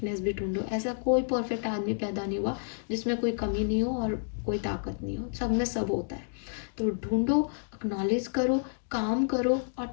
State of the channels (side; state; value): right; silent; digital silence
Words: भी ढूंढो। ऐसा कोई परफेक्ट आदमी पैदा नहीं हुआ जिसमें कोई कमी नहीं हो और कोई ताकत नहीं हो, सब में सब होता है। तो ढूंढो, एक्नॉलेज करो, काम करो और